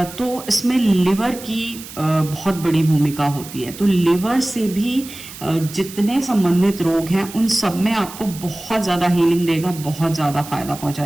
तो इसमें लिवर की बहुत बड़ी भूमिका होती है। तो लिवर से भी जितने संबंधित रोग हैं उन सब में आपको बहुत ज़्यादा हीलिंग देगा, बहुत ज़्यादा फायदा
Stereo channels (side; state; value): right; noise; hiss, 15 dB below the sound